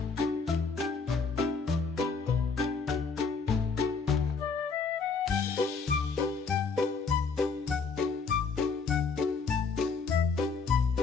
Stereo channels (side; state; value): right; quieter; 4.9 dB